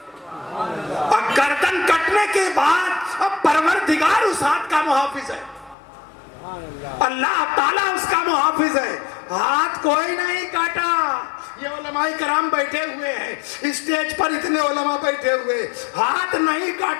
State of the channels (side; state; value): right; drops out; at 5.8 s